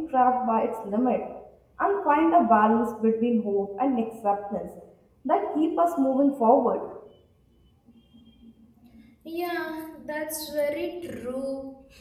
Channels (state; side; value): identical; both; correlation 1.00